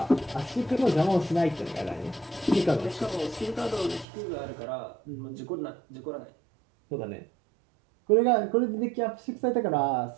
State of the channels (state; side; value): drops out; left; at 4.0 s